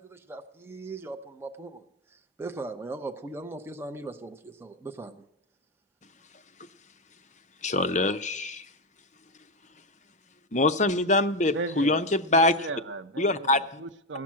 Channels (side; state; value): both; normal; correlation 0.10